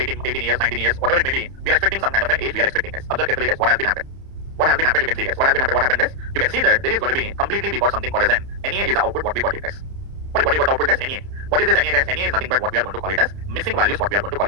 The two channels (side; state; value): left; late; 30 ms